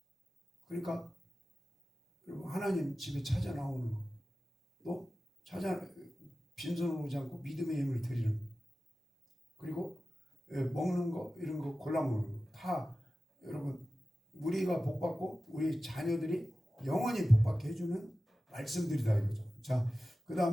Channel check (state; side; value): normal; both; correlation 0.95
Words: 그러니까 하나님 집에 찾아 나오는 거, 또 빈손으로 오지 않고 믿음의 힘을 드리는 거, 그리고 먹는 거 이런 거 골라 먹는 거 다 여러분 우리가 복받고 우리 자녀들이 영원히 복받게 해주는 말씀들이다 이거죠. 자, 그